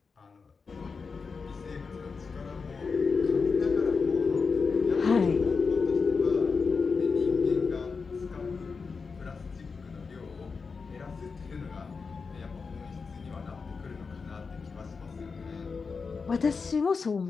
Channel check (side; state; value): right; quieter; 4.9 dB